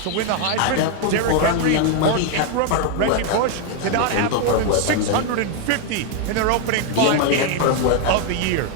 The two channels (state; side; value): different; both; correlation 0.01